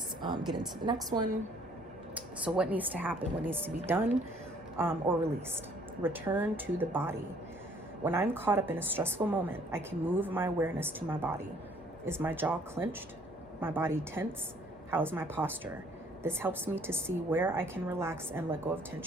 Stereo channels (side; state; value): both; normal; correlation 0.60